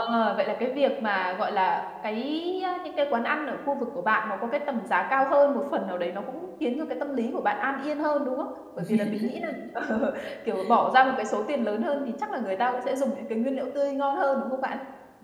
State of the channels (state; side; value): identical; both; correlation 1.00